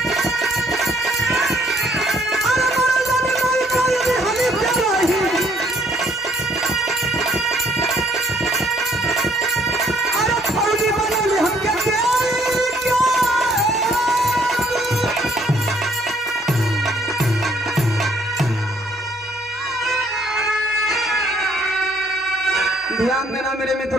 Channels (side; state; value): both; normal; correlation 0.64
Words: ध्यान देना मेरे